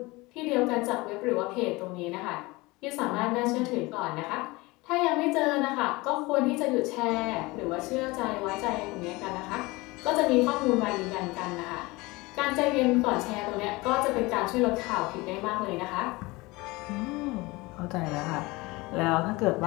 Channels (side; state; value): right; quieter; 22.7 dB